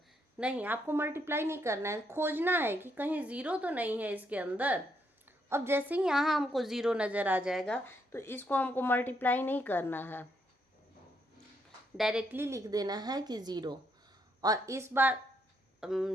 नहीं, आपको मल्टीप्लाई नहीं करना है, खोजना है कि कहीं ज़ीरो तो नहीं है इसके अंदर। अब जैसे ही यहाँ हमको ज़ीरो नज़र आ जाएगा तो इसको हमको मल्टीप्लाई नहीं करना है, डायरेक्टली लिख देना है कि ज़ीरो। और इस बार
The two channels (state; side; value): normal; both; correlation 0.75